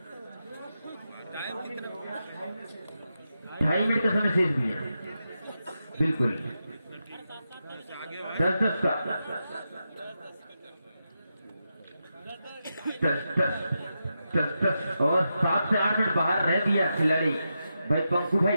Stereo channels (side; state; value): both; inverted; correlation -0.88